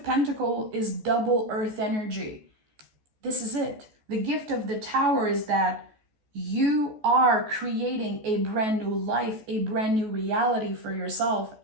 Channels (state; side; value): late; left; 14 ms